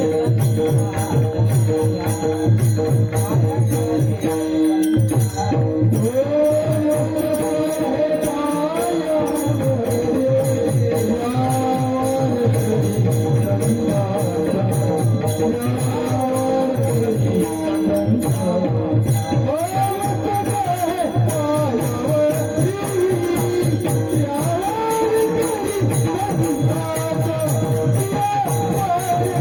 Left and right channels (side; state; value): both; identical; correlation 1.00